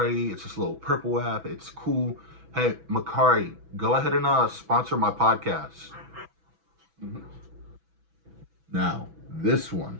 It's this little purple app. It's cool. Hey, Macari, go ahead and sponsor my podcast. Now, this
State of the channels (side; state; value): left; late; 6.1 ms